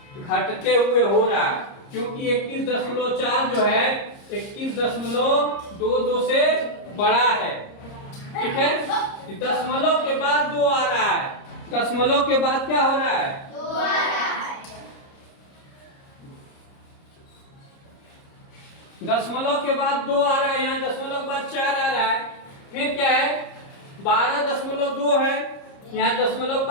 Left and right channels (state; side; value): late; right; 30 ms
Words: घटते हुए हो रहा है, क्योंकि 21.4 जो है 21.22 से बड़ा है। ठीक है, दशमलव के बाद 2 आ रहा है, दशमलव के बाद क्या हो रहा है? 2 आ रहा है। दशमलव के बाद 2 आ रहा है, यहाँ दशमलव के बाद 4 आ रहा है। फिर क्या है? 12.2 है, यहाँ दशमलव के